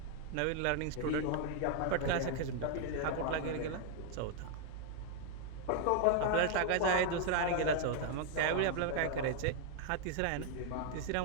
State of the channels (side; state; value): both; different; correlation 0.00